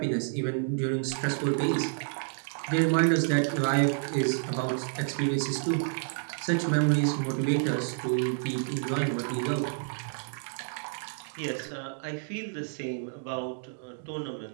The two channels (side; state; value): left; silent; digital silence